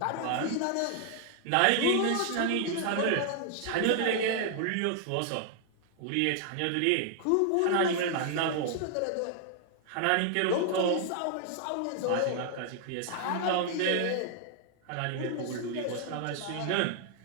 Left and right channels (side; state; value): both; different; correlation 0.00